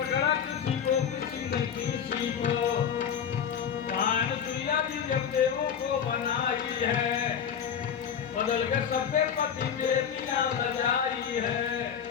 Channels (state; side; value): quieter; right; 7.9 dB